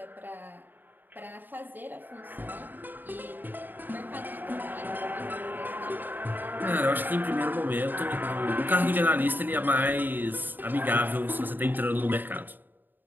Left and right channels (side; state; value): left; late; 0.091 ms